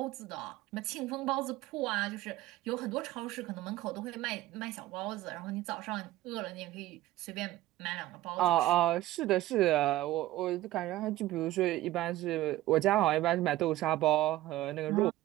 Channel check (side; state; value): left; quieter; 16.0 dB